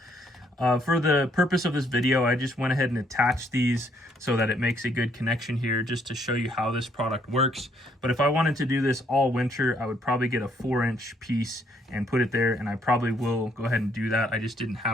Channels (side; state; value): both; normal; correlation 0.68